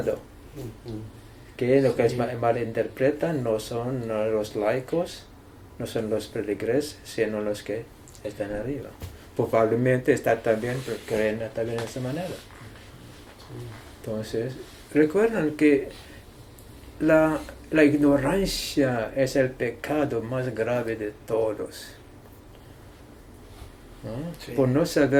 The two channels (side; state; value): both; identical; correlation 1.00